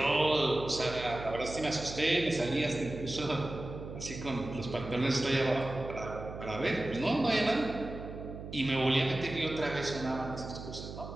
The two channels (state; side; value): noise; right; hum, 10 dB below the sound